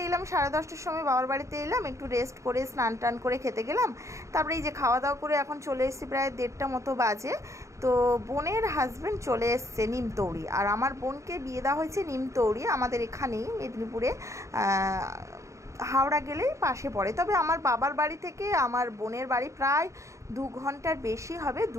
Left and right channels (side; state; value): left; late; 0.15 ms